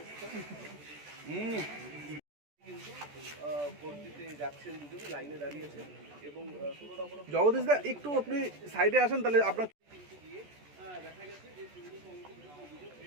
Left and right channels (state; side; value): late; left; 14 ms